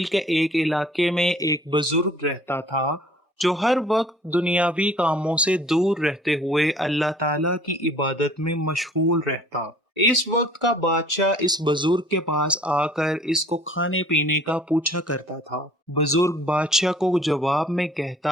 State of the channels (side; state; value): both; normal; correlation 0.53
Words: کے ایک علاقے میں ایک بزرگ رہتا تھا جو ہر وقت دنیاوی کاموں سے دور رہتے ہوئے اللہ تعالیٰ کی عبادت میں مشغول رہتا۔ اس وقت کا بادشاہ اس بزرگ کے پاس آ کر اس کو کھانے پینے کا پوچھا کرتا تھا۔ بزرگ بادشاہ کو جواب میں